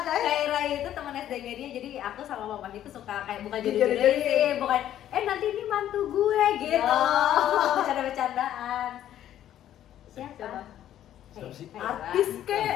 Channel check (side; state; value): right; quieter; 11.6 dB